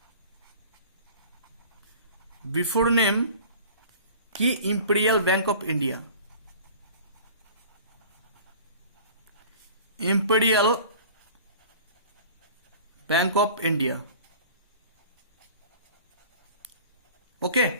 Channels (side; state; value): both; inverted; correlation -0.43